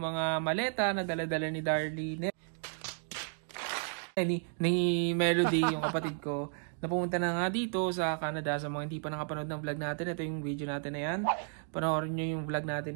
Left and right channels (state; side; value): silent; left; 56 dB below the other